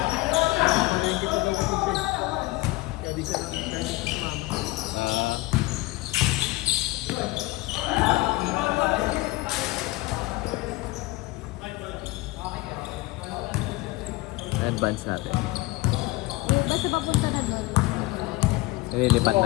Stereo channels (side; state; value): right; quieter; 20.6 dB